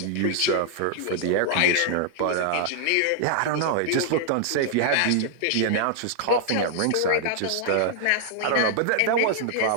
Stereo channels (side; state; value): both; different; correlation 0.00